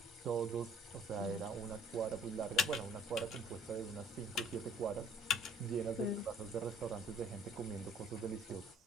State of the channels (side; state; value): both; normal; correlation 0.56